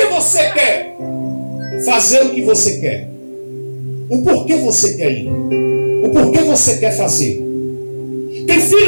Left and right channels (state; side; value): inverted; both; correlation -1.00